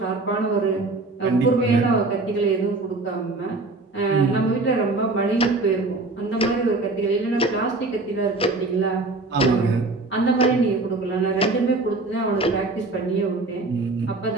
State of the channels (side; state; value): left; quieter; 3.3 dB